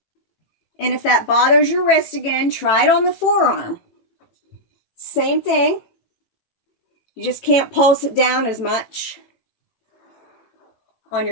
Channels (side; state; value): right; late; 18 ms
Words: And if that bothers your wrist again, try it on the forearm. Same thing. You just can't pulse it down as much on